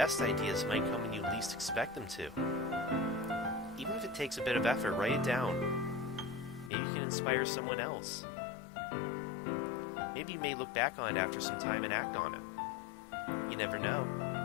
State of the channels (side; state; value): right; drops out; at 6.7 s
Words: ideas might come when you least expect them to. Even if it takes a bit of effort, write it down. Maybe you can inspire someone else. Maybe you may look back on it after some time and act on it. You never know.